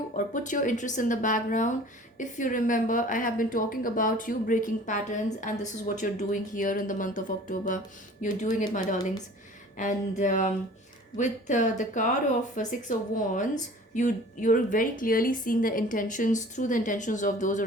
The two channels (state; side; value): normal; both; correlation 0.46